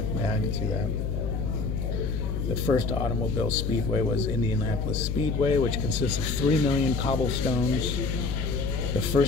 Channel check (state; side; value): noise; left; hum, 1 dB below the sound